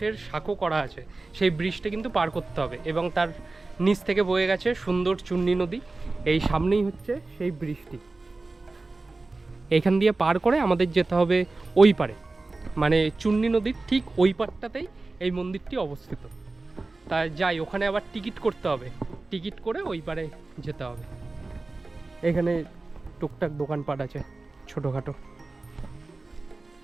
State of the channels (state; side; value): quieter; left; 3.4 dB